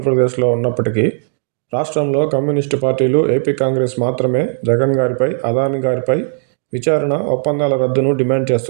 ఉన్నప్పటికీ, రాష్ట్రంలో కమ్యూనిస్టు పార్టీలు, ఏపీ కాంగ్రెస్ మాత్రమే జగన్ గారిపై, అదానీ గారిపై విచారణ, ఒప్పందాల రద్దును డిమాండ్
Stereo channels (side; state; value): left; silent; digital silence